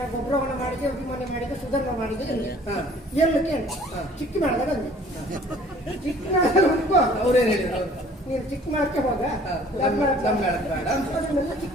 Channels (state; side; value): normal; both; correlation 0.53